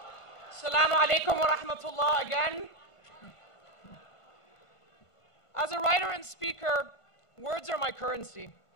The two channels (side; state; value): right; late; 1.5 ms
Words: Assalamu alaikum wa rahmatullah again. As a writer and speaker, words are my currency.